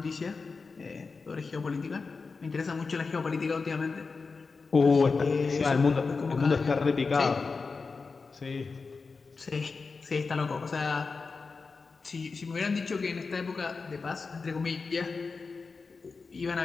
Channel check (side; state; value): right; quieter; 4.5 dB